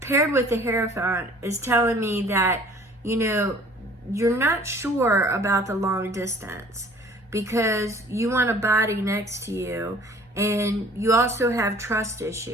paired with the Hierophant is telling me that, you're not sure about the long distance because you want a body next to you, and you also have trust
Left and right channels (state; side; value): normal; both; correlation 0.51